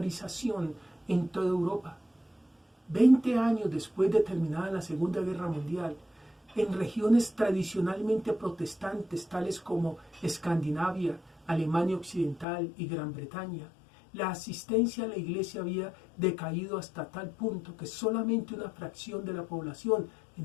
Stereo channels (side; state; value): right; drops out; at 12.5 s